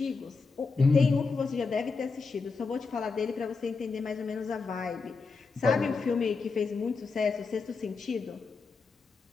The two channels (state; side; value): quieter; right; 4.5 dB